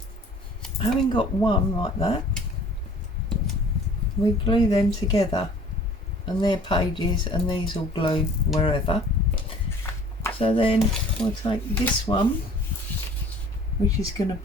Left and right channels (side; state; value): both; normal; correlation 0.51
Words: having got one like that, we glue them together, and they're pages, and these will glue wherever. So then we'll take this one, which is going to